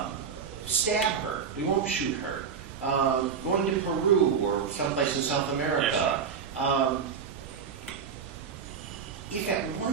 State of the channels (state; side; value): quieter; left; 6.5 dB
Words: Stab her. We won't shoot her. Going to Peru or someplace in South America. Yes, if at